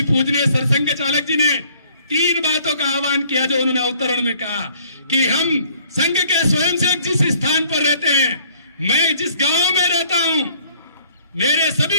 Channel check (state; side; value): inverted; both; correlation -0.58